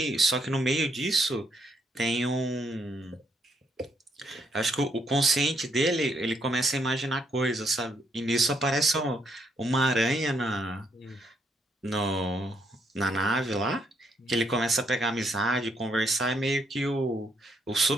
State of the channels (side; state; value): both; normal; correlation 0.74